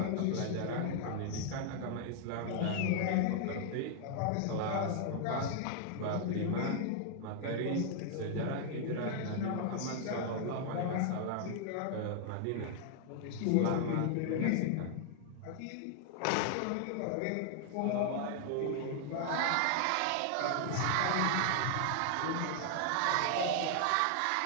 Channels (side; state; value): both; different; correlation 0.00